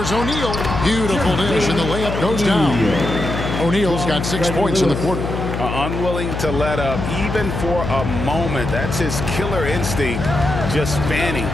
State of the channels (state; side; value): noise; left; hum, 4 dB below the sound